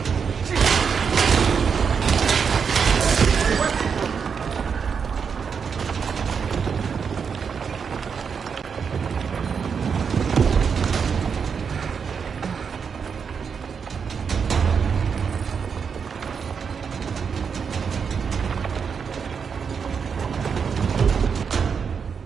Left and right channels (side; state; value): left; quieter; 6.3 dB